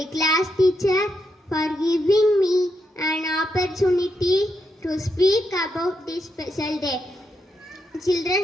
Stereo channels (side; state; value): both; normal; correlation 0.82